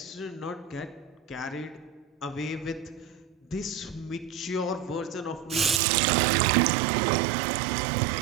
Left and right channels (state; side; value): drops out; left; at 5.8 s